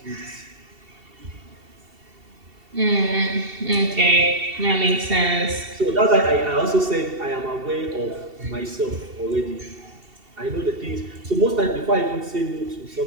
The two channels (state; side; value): late; left; 2.7 ms